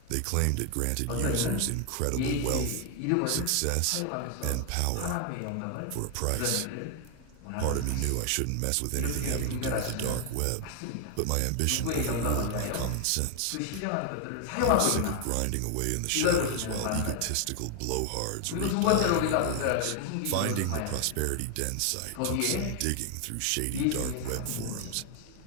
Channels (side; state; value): both; different; correlation 0.01